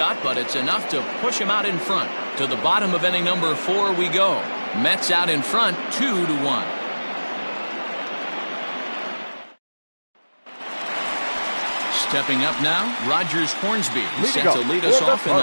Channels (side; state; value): both; inverted; correlation -1.00